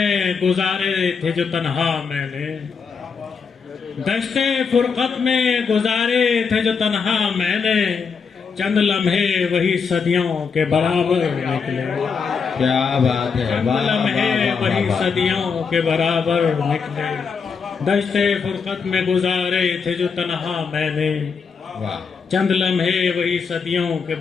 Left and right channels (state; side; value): quieter; right; 5.7 dB